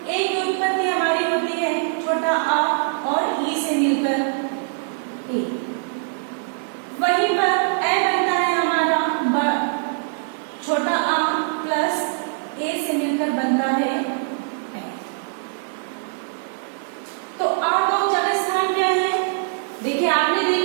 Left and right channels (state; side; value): silent; left; digital silence